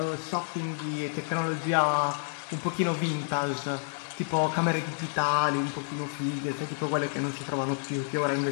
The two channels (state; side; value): silent; right; 58 dB below the other